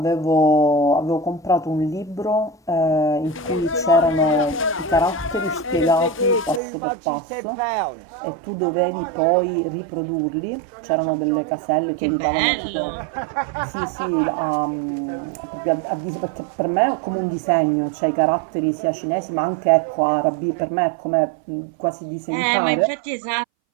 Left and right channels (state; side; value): drops out; left; at 6.6 s